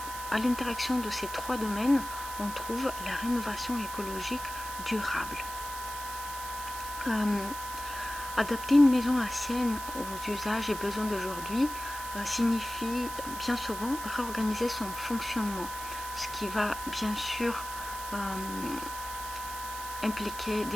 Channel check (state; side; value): noise; right; hiss, 10 dB below the sound